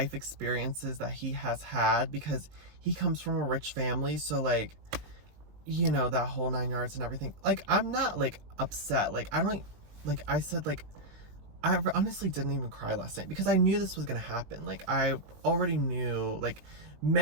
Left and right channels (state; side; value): late; left; 20 ms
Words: experiences that he has had because he comes from a rich family. So, like, you know, that whole 9 yards and everything. Like, I'm not, like, upset. Like, I don't, like, I said, like, I honestly didn't even cry last night because I knew this was gonna happen. Like, I already knew, like,